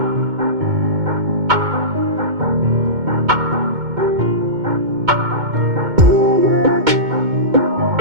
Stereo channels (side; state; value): left; late; 2.2 ms